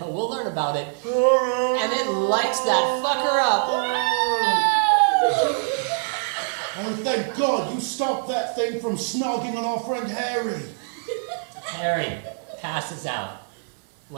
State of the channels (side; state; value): left; silent; digital silence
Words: we'll learn about it. And it lights that fucker up. Oh, thank God you stopped that thing from snogging on our friend Harry. Harry passes out.